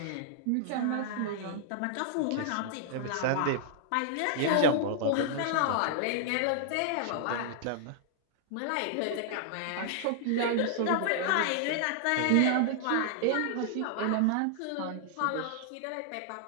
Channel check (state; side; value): different; both; correlation -0.01